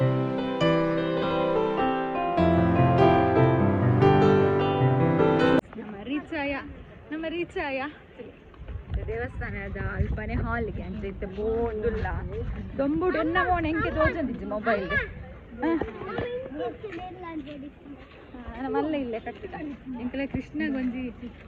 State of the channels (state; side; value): identical; both; correlation 1.00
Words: ನಮ್ಮ ರೀಚ್ ಆಯ ದೇವಸ್ಥಾನದ ಅಲ್ಪನೆ ಹಾಲ್ಗೆ ಅಂತ ಇತ್ತು ಬೋಂದುಲ್ಲ ದೊಂಬುಡು ಎನ್ನ ಮೋಣ ಎಂಕೆ ತೋಜಂದಿಜ್ಜಿ ಮೊಬೈಲ್ ಮಲ್ಲ ಇಲ್ಲೇ ಕಟ್ಟಿದ ಎಂಕಲೆ ಕೃಷ್ಣ ಗೊಂಜಿ